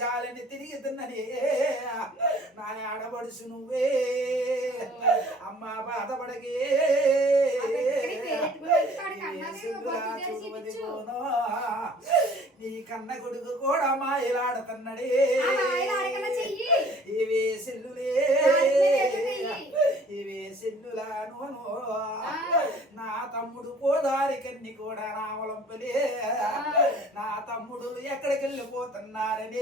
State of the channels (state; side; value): normal; both; correlation 0.53